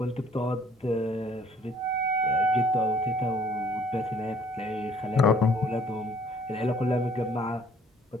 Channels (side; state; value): both; normal; correlation 0.59